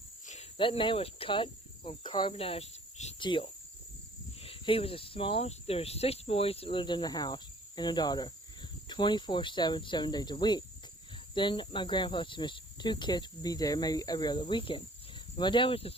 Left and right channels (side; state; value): both; normal; correlation 0.55